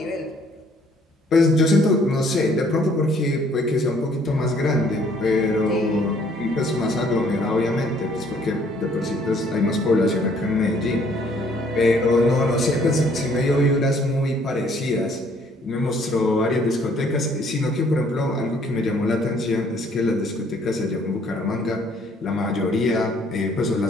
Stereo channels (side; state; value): both; normal; correlation 0.62